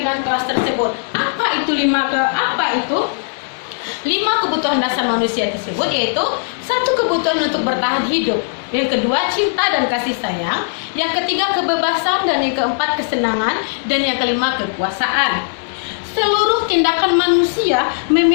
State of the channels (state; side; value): silent; right; digital silence